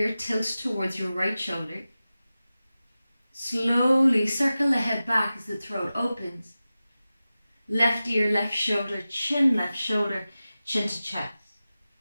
tilt towards your right shoulder. Slowly circle the head back as the throat opens. Left ear, left shoulder, chin to chest.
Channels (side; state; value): both; inverted; correlation -0.95